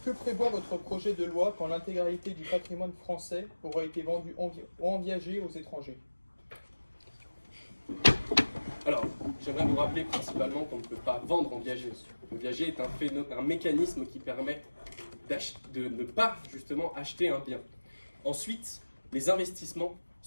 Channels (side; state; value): both; inverted; correlation -1.00